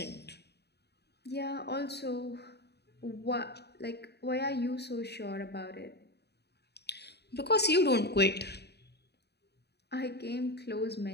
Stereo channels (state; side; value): late; right; 0.48 ms